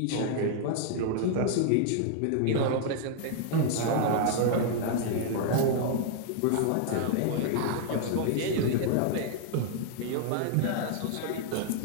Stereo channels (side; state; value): both; different; correlation 0.00